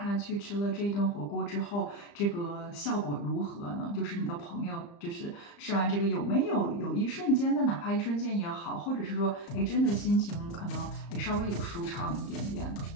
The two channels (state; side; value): late; right; 35 ms